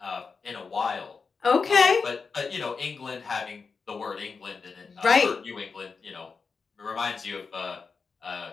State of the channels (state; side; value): quieter; right; 5.0 dB